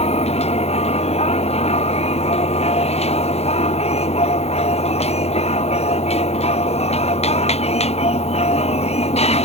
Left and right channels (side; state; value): right; late; 0.31 ms